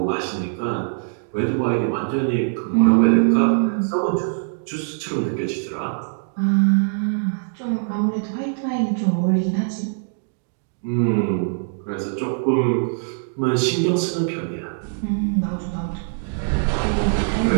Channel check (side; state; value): left; silent; digital silence